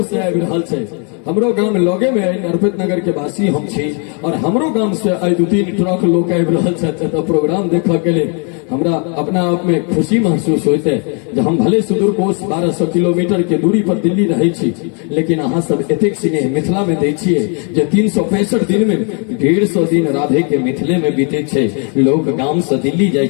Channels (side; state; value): right; quieter; 38.3 dB